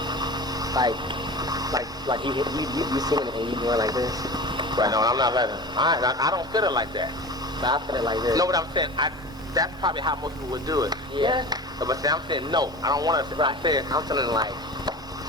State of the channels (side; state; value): both; normal; correlation 0.33